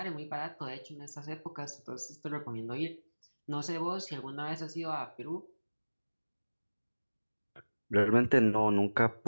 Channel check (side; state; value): both; inverted; correlation -1.00